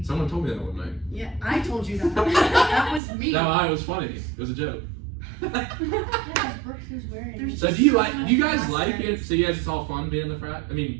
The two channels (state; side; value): drops out; left; at 3.0 s